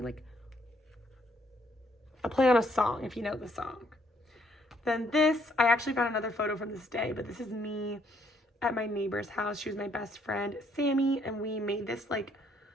Like a play on a song, if you know the song. Then this, I actually found another photo from this day, but this is me at my neighbor's house. She was my best friend, Sammy, and we made this like,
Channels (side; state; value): both; normal; correlation 0.68